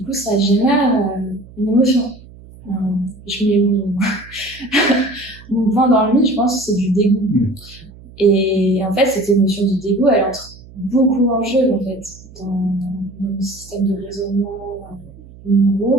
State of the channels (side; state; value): right; noise; hum, 20 dB below the sound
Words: coup, ça génère une émotion. Je mets mon point dans le mille, je pense que c'est du dégoût. Et en fait, cette émotion du dégoût, elle entre beaucoup en jeu, en fait, dans le système de raisonnement